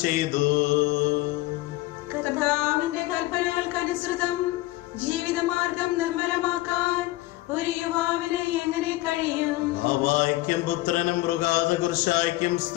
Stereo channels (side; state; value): right; quieter; 18.6 dB